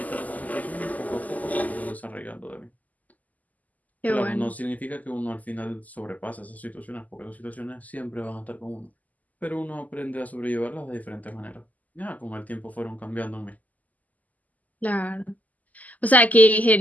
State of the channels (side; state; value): right; late; 0.078 ms